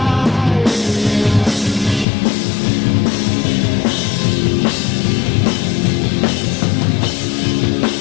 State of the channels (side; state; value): right; drops out; at 2.1 s